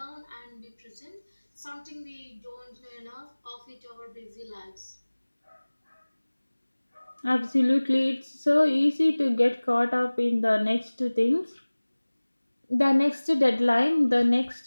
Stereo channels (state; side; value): inverted; both; correlation -1.00